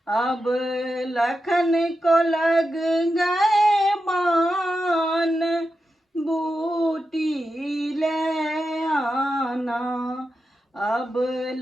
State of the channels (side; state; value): both; normal; correlation 0.89